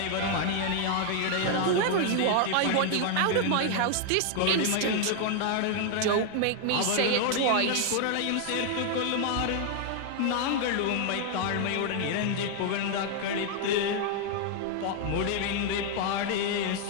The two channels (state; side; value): different; both; correlation 0.00